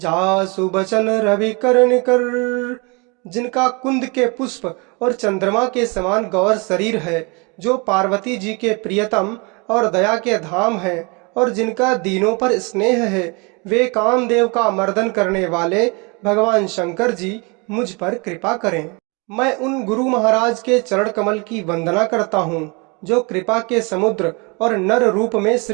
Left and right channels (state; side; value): quieter; left; 30.0 dB